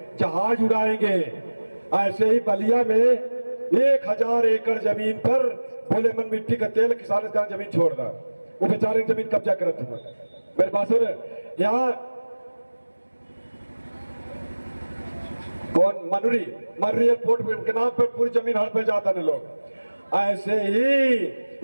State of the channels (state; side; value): inverted; both; correlation -1.00